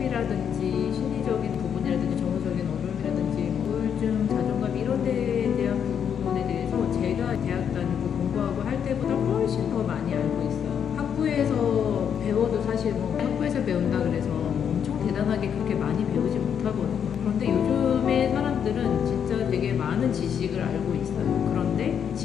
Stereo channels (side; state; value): right; quieter; 8.1 dB